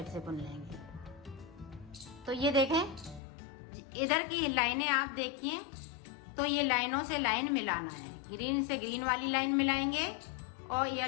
से बुन लेंगे। तो ये देखें इधर की लाइनें आप देखिए, तो ये लाइनों से लाइन मिलाना है। ग्रीन से ग्रीन वाली लाइन मिलाएंगे और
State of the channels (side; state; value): right; drops out; at 3.2 s